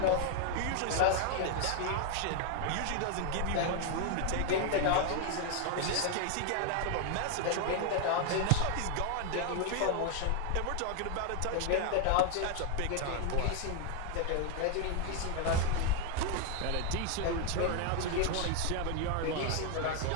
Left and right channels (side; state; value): both; different; correlation 0.00